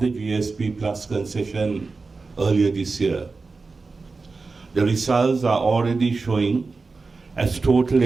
the GSP Plus concession earlier this year. The results are already showing as total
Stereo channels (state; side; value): quieter; left; 4.1 dB